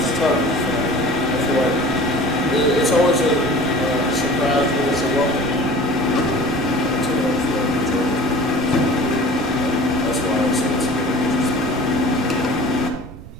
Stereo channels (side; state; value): right; noise; rumble, 15 dB below the sound